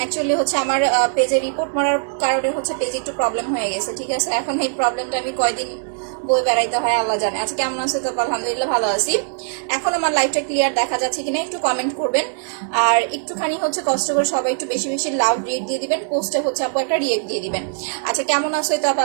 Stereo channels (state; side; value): silent; left; digital silence